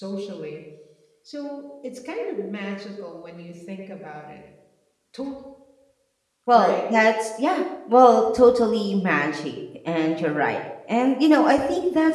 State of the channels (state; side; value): identical; both; correlation 1.00